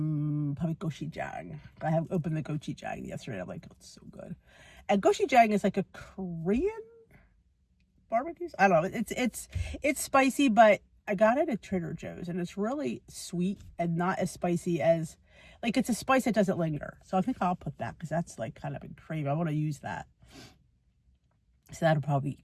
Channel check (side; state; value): both; identical; correlation 1.00